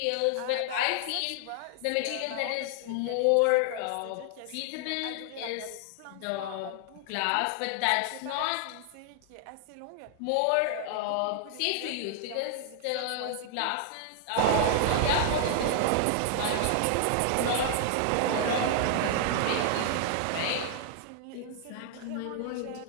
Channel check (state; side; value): different; both; correlation 0.00